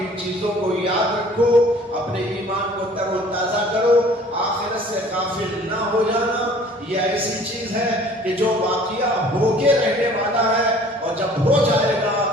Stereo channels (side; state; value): both; normal; correlation 0.51